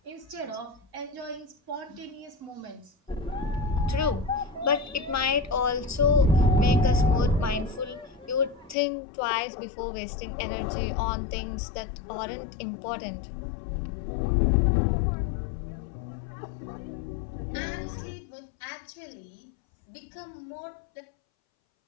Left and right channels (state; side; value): drops out; right; at 8.8 s